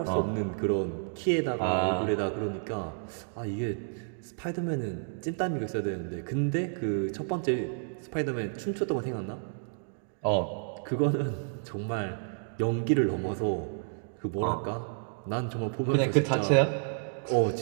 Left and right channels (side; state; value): left; silent; digital silence